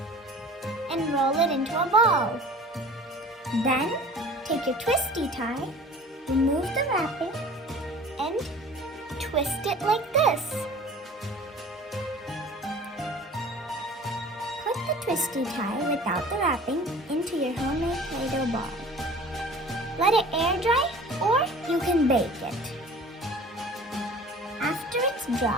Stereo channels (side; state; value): both; normal; correlation 0.44